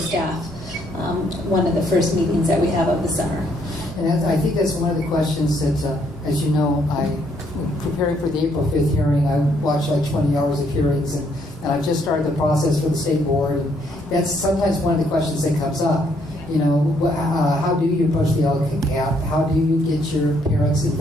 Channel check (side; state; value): both; normal; correlation 0.70